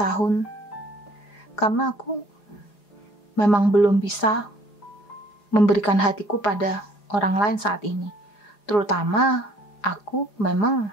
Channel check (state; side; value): late; right; 4.9 ms